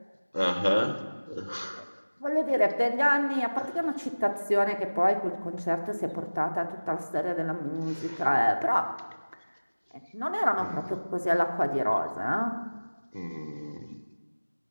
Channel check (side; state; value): both; inverted; correlation -1.00